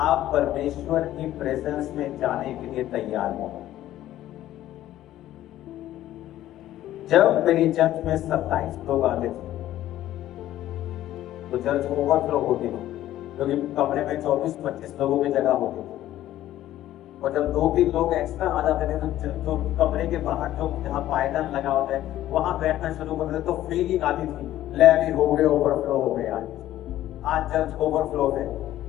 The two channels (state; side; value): quieter; right; 13.6 dB